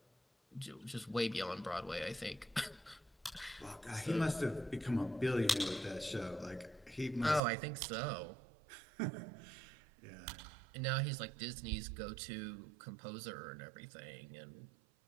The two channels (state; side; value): drops out; left; at 7.4 s